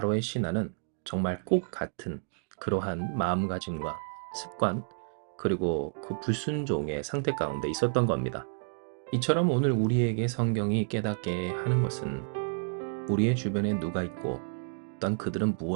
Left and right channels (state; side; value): silent; left; digital silence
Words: 신하는 정말 꼭 같은 그러한 마음가짐과 습관 그리고 그 불순종의 상태 가운데 있었던 겁니다. 이처럼 오늘 우리에게 성경이 깨닫게 하는 것은 우리의 주변에 누가 있고 또한 그들은